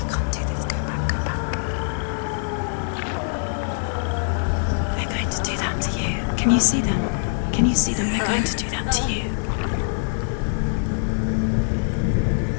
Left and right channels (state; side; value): silent; right; digital silence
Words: Can't do this. Go back, go back. They're going to do that to you. Can you see them? Can you see them? They're going to do that to you.